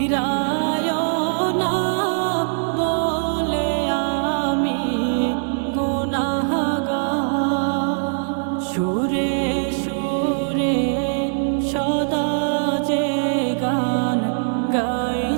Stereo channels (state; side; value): silent; left; digital silence